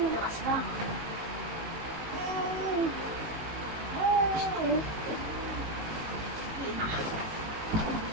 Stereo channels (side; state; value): left; late; 18 ms